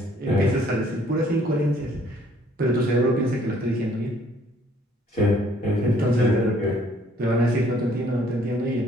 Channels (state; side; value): normal; both; correlation 0.61